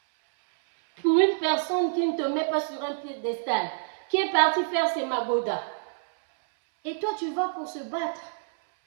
Pour une personne qui ne te met pas sur un piédestal, qui est partie faire ses magodas. Et toi, tu vas pour se battre.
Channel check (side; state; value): left; silent; 60 dB below the other